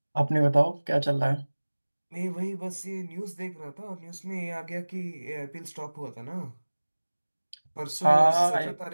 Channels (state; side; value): inverted; both; correlation -1.00